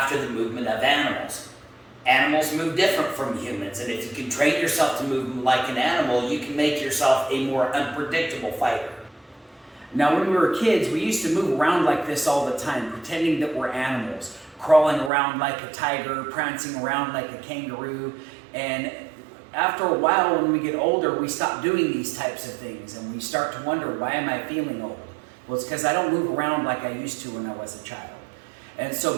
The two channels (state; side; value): drops out; left; at 15.1 s